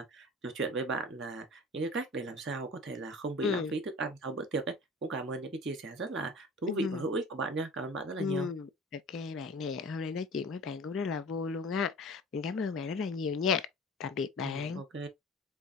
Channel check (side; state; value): both; normal; correlation 0.40